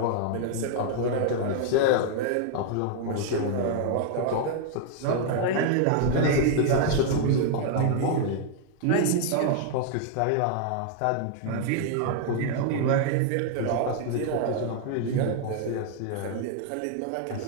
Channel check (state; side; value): different; both; correlation 0.00